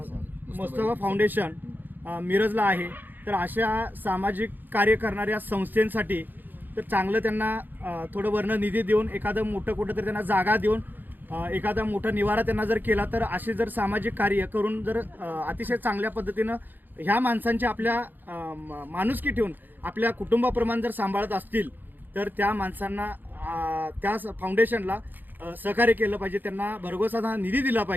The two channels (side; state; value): left; late; 0.089 ms